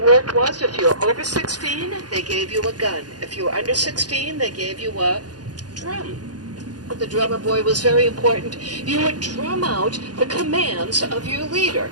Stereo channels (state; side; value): late; left; 0.69 ms